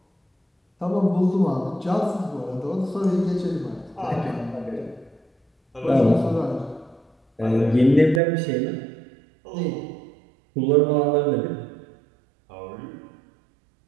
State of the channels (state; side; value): drops out; left; at 8.2 s